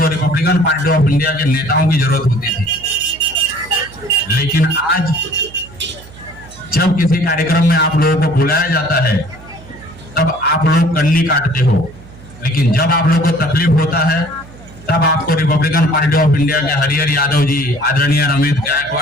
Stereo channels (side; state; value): right; noise; hum, 20 dB below the sound